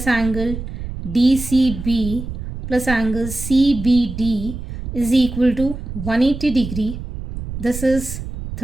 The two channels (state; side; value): noise; right; rumble, 8 dB below the sound